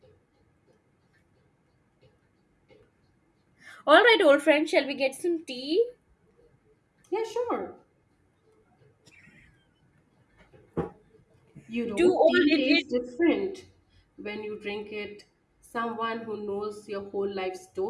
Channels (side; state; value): both; identical; correlation 1.00